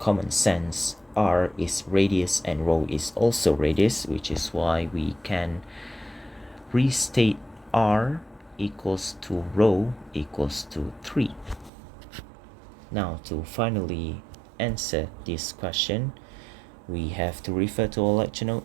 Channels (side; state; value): left; drops out; at 11.7 s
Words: sense, R is radius and rho is also radius, which is why we can restate R equals to rho equals to 3. Now, to finally answer this question, we have to refer to our lecture